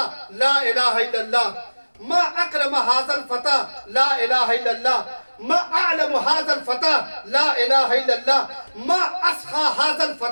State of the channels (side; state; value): both; inverted; correlation -1.00